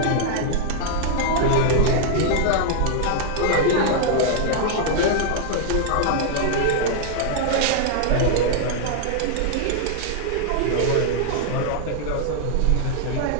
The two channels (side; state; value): both; different; correlation -0.01